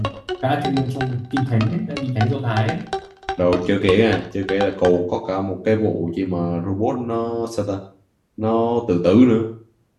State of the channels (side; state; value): both; identical; correlation 1.00